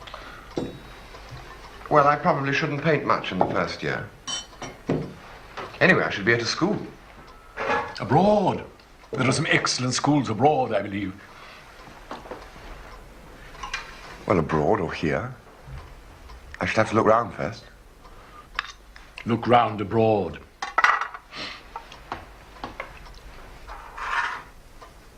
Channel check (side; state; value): both; identical; correlation 1.00